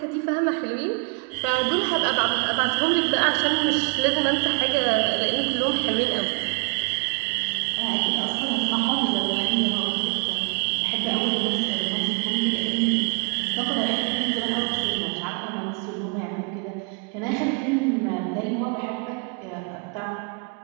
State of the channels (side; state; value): left; quieter; 30.9 dB